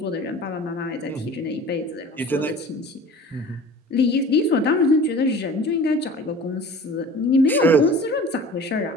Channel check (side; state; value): both; normal; correlation 0.42